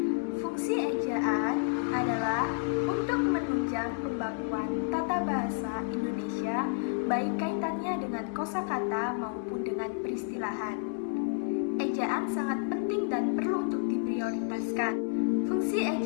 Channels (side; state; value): right; silent; 58 dB below the other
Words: Fungsi ejaan adalah untuk menunjang pembakuan tata bahasa Indonesia, baik kaitannya dengan kosakata maupun dengan peristilahan. Ejaan sangat penting dan perlu untuk diprioritaskan. Fungsi